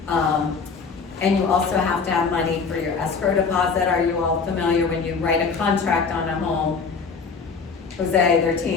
And you also have to have money for your escrow deposit. Are you all familiar when you write a contract on a home? Jose, their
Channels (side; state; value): right; quieter; 5.1 dB